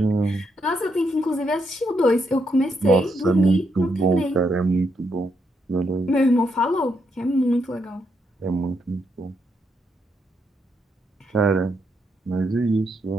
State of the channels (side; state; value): both; normal; correlation 0.79